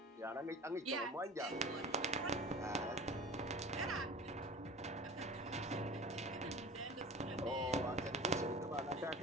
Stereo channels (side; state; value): both; normal; correlation 0.38